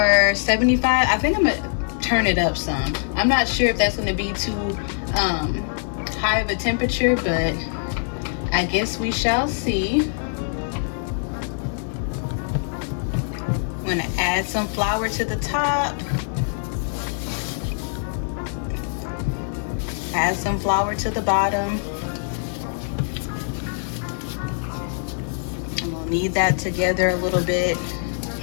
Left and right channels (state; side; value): silent; right; 63 dB below the other